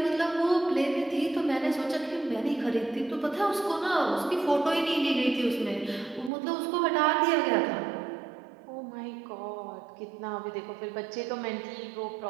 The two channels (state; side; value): drops out; left; at 6.3 s